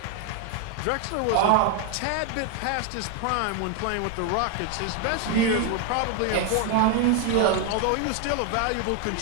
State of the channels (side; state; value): both; different; correlation 0.01